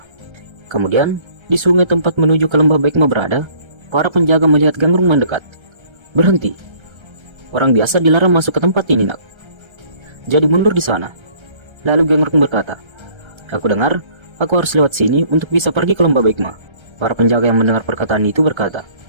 Kemudian, di sungai tempat menuju ke lembah Baekma berada, para penjaga melihat Gangrung mendekat. Berhenti. Orang biasa dilarang masuk ke tempat ini, nak. Jadi mundur di sana. Lalu Gangrung berkata, aku dengar, aku harus lewat sini untuk bisa pergi ke lembah Baekma. Para penjaga yang mendengar perkataan itu berkata,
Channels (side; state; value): left; late; 1.3 ms